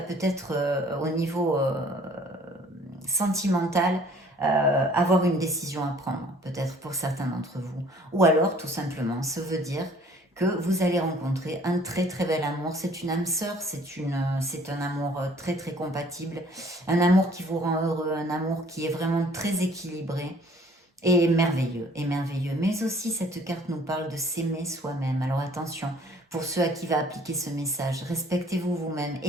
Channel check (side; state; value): both; normal; correlation 0.55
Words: peut-être au niveau sentimental avoir une décision à prendre, peut-être pour certains d'entre vous. Ou alors, tout simplement, ça veut dire que vous allez rencontrer un très bel amour. C'est une âme sœur, c'est un amour très compatible, un amour qui vous rend heureux, un amour qui est vraiment très équilibré et merveilleux. Mais aussi, cette carte nous parle de s'aimer soi-même. Alors attention, pour ceux à qui va appliquer ce message, respectez-vous vous-même,